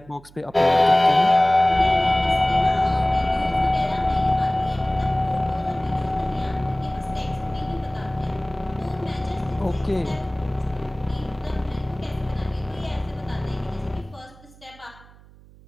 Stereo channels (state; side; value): noise; right; hum, 24 dB below the sound